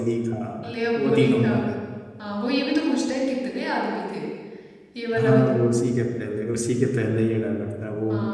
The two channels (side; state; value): both; identical; correlation 1.00